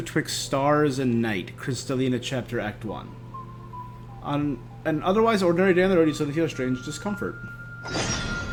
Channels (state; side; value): identical; both; correlation 1.00